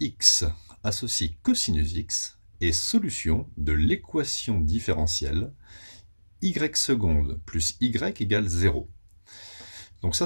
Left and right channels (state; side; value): inverted; both; correlation -1.00